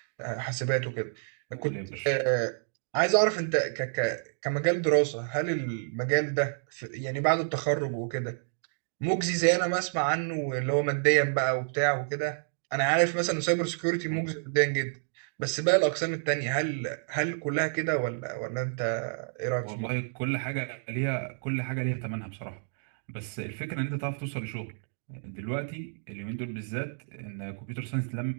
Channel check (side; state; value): left; silent; digital silence